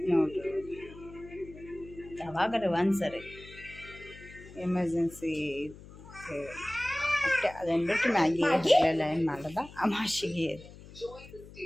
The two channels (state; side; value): noise; left; hum, 18 dB below the sound